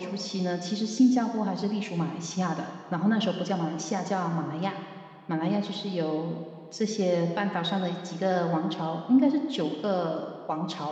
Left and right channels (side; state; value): both; identical; correlation 1.00